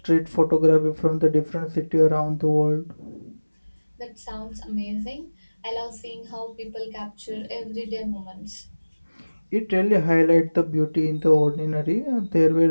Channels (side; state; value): both; inverted; correlation -1.00